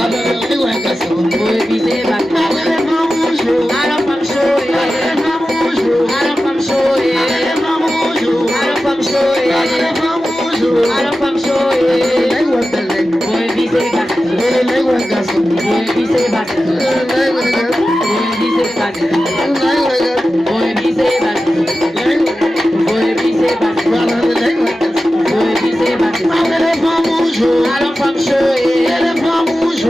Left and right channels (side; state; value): both; normal; correlation 0.93